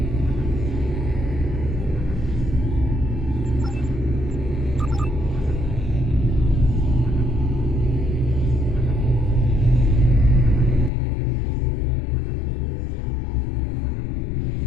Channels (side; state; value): right; drops out; at 10.9 s